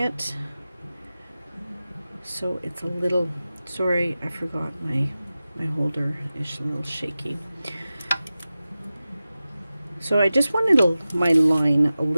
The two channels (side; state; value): both; inverted; correlation -0.95